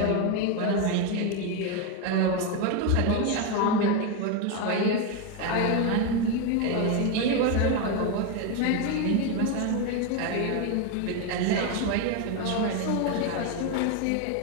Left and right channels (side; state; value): both; different; correlation 0.02